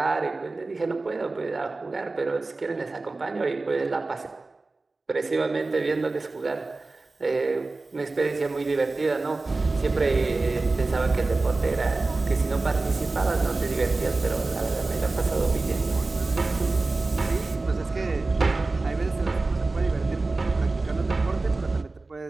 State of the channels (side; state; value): left; quieter; 3.4 dB